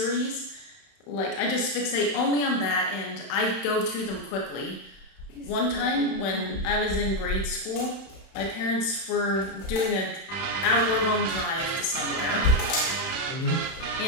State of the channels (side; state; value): right; late; 31 ms